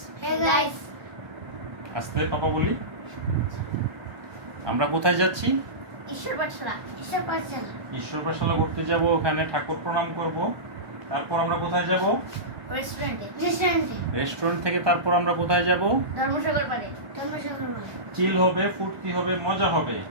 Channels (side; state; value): left; late; 1.2 ms